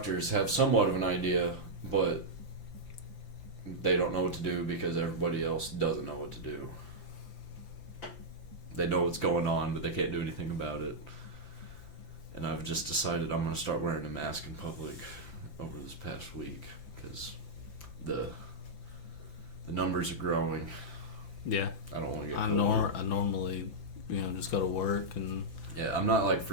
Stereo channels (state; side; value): late; right; 5.9 ms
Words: have somewhat of an idea, but they don't know what to do because everybody else doesn't know what to do. They know what's going on, but they can't do anything about it. And I've just decided I'm going to start wearing a mask in public over this past week, because the numbers are growing. Yeah. I don't want to get I normally, you know, just go to work and... Yeah, I'm not like